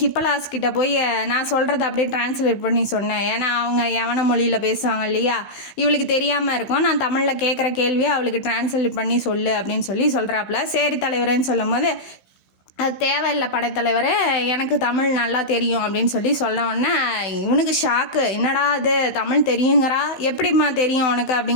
ஹிப்பலாஸ் கிட்ட போய் நான் சொல்கிறத அப்படியே டிரான்ஸ்லேட் பண்ணி சொன்னேன். ஏன்னா அவங்க யவன மொழியில் பேசுவாங்க இல்லையா, இவளுக்கு தெரியாமல் இருக்கும். நான் தமிழில் கேட்குற கேள்வியை அவளுக்கு டிரான்ஸ்லேட் பண்ணி சொல்லு அப்படின்னு சொல்லி சொல்கிறாப்புல. சரி தலைவரேன்னு சொல்லும் போது, அது தேவையில்லை படைத்தலைவரே, எனக்கு தமிழ் நல்லா தெரியும் அப்படின்னு சொல்லி சொல்ல உடனே இவனுக்கு ஷாக்கு. என்னடா அது தமிழ் தெரியுங்கிறா, எப்படிம்மா தெரியும் உனக்கு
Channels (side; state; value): right; late; 15 ms